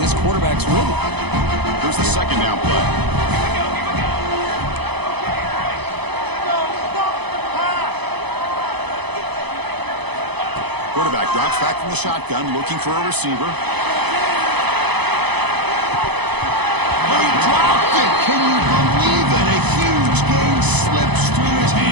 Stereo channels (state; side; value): late; left; 0.99 ms